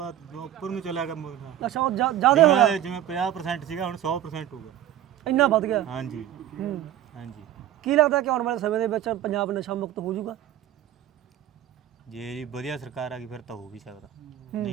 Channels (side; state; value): left; quieter; 11.7 dB